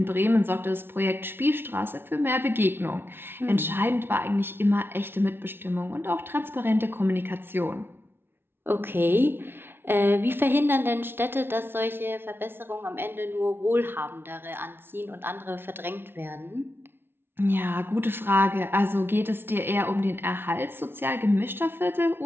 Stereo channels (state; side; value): late; left; 0.11 ms